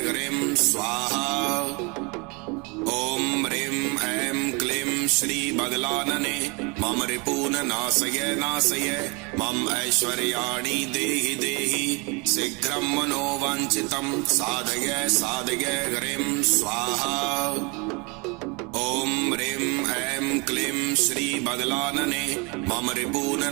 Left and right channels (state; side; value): quieter; left; 30.1 dB